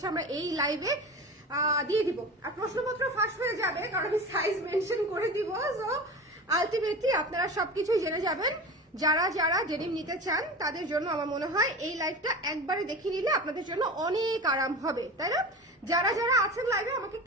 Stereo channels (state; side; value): normal; both; correlation 0.31